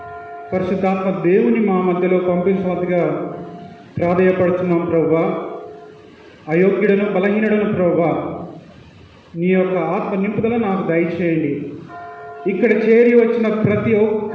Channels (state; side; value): identical; both; correlation 1.00